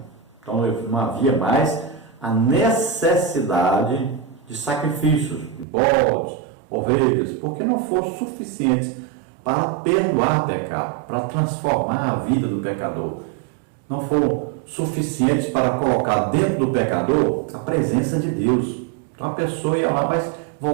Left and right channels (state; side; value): drops out; left; at 5.7 s